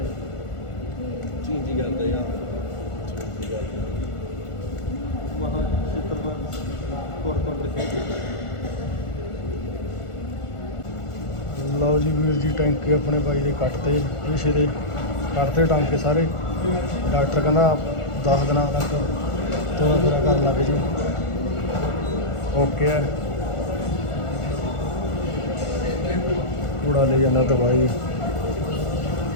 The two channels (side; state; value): right; late; 1.4 ms